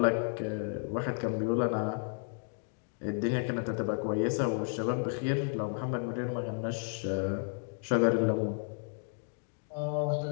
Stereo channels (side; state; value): right; silent; 56 dB below the other